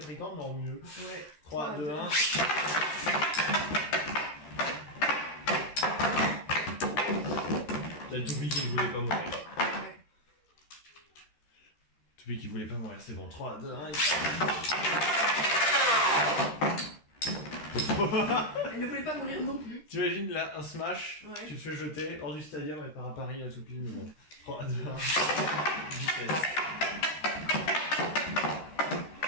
mais en mieux. Ouais. 3, 2, 1. La toupie qui ne voulait pas mourir. Ouais. Toupie qui voulait pas mourir, c'est bon. 3, 2, 1. Elle ne voulait pas mourir non plus. T'imagines là un smash, ouais. Tu te fais jeter hors du stadium et part à Paris la toupie, mais bon. 3, 2, 1. Vitesse.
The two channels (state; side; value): late; right; 13 ms